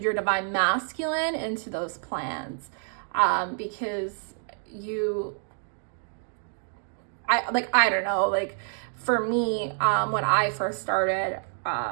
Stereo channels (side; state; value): left; silent; 60 dB below the other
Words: divine masculine into those plans, because I don't know, like for me, when I first started,